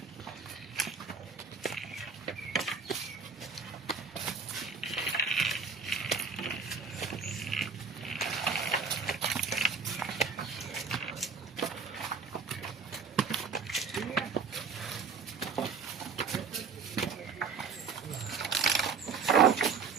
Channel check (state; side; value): quieter; left; 5.4 dB